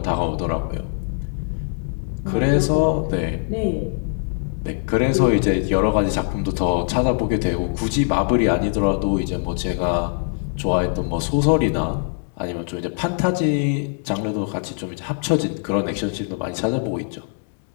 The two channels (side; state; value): right; silent; 60 dB below the other